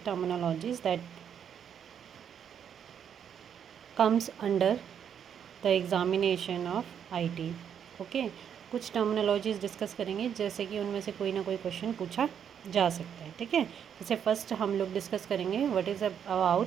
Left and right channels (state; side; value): quieter; left; 8.3 dB